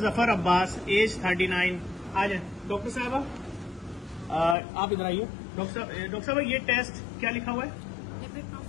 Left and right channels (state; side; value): drops out; right; at 4.5 s